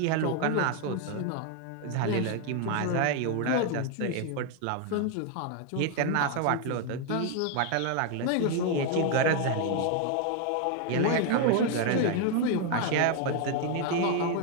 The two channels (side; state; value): both; different; correlation 0.01